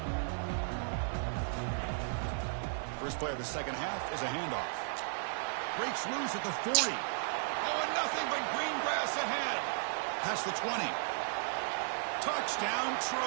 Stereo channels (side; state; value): left; silent; digital silence